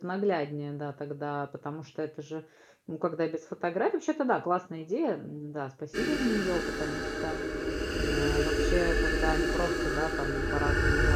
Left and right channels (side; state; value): both; identical; correlation 1.00